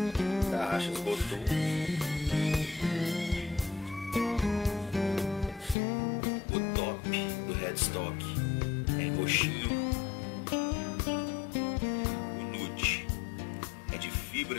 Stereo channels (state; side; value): drops out; right; at 5.8 s